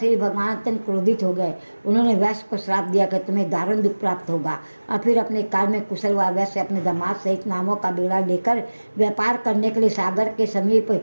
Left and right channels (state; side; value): inverted; both; correlation -1.00